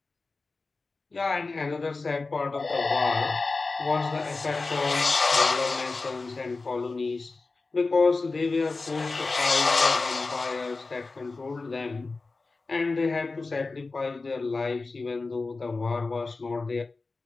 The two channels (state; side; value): quieter; right; 3.8 dB